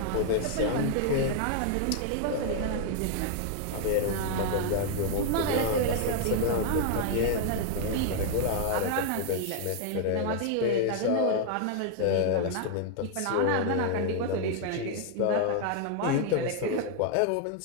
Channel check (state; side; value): different; both; correlation 0.00